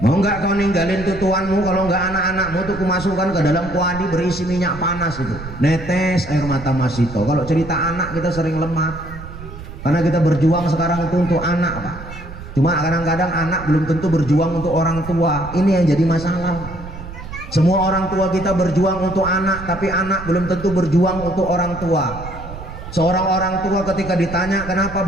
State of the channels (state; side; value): noise; right; rumble, 12 dB below the sound